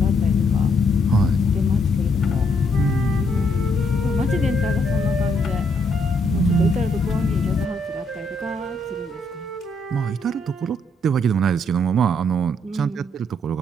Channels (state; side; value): normal; both; correlation 0.72